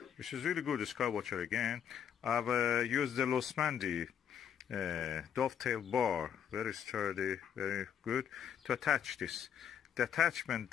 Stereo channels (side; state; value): right; quieter; 8.7 dB